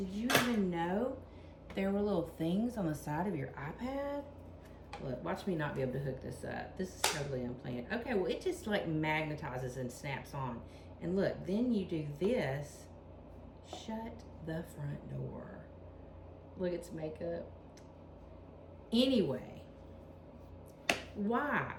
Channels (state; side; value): identical; both; correlation 1.00